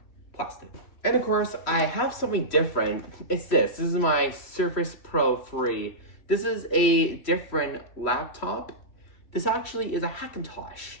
plastic. And of course, I have something different. It's this. This is my Surface Pro 3. This is a different laptop. This actually is a Hackintosh.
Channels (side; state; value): right; late; 3.1 ms